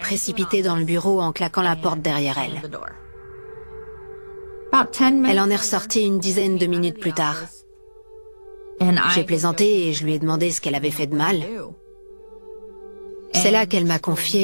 dans le bureau en claquant la porte derrière elle. Elle en est ressortie une dizaine de minutes plus tard. J'ai plaisanté et je lui ai demandé ce qu'elle avait fait de mal. C'est là qu'elle m'a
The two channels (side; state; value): both; inverted; correlation -1.00